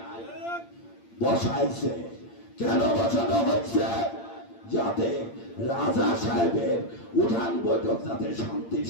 বসাইছে। কেন বসানো হচ্ছে? যাতে রাজা সাহেবের উঠান বৈঠক যাতে শান্তির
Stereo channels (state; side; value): late; right; 8.7 ms